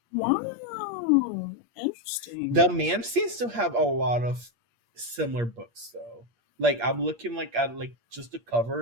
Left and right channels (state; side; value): late; left; 8.5 ms